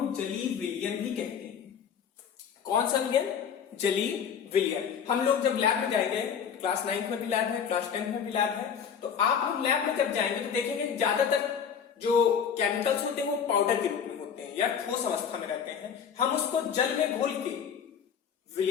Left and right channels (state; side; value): quieter; right; 7.5 dB